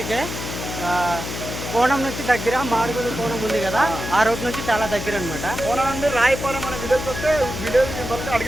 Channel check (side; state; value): left; noise; hum, 7 dB below the sound